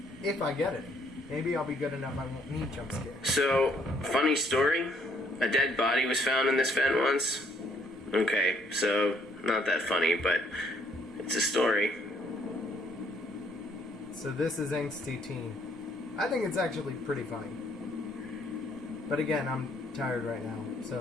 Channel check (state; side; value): normal; both; correlation 0.65